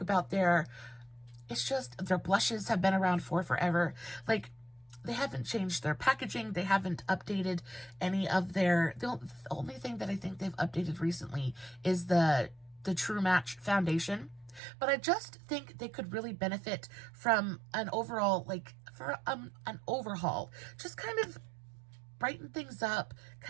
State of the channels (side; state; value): left; drops out; at 14.6 s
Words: about their it's just, their blushes have been around for forever. Like, they haven't changed their packaging. They haven't updated any of their, the only thing that I think they've updated recently is the True Match foundation. But I just think they could really benefit from an overall, like, for an overhaul. Just kind of brighten things up,